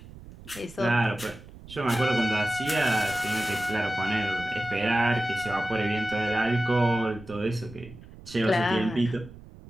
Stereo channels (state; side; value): noise; right; rumble, 18 dB below the sound